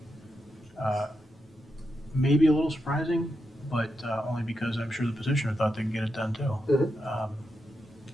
Maybe a little surprising, but only because I'm sure the petitioner thought they could get it done too.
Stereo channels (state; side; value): normal; both; correlation 0.86